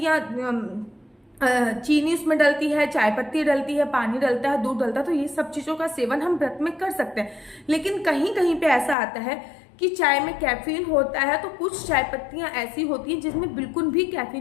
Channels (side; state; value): right; drops out; at 9.0 s